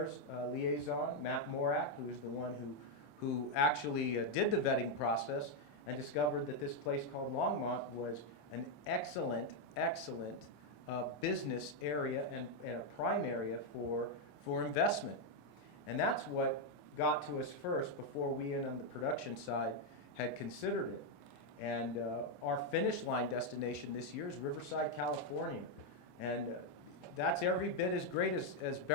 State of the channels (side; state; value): right; late; 14 ms